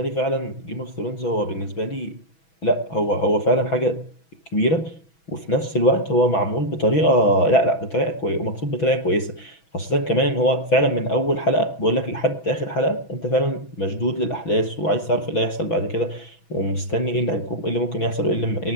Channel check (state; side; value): late; right; 6.2 ms